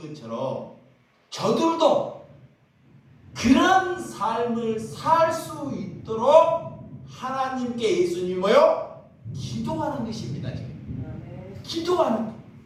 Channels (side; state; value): both; identical; correlation 1.00